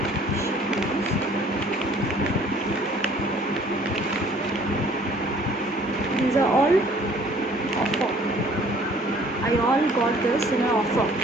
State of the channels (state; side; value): normal; both; correlation 0.55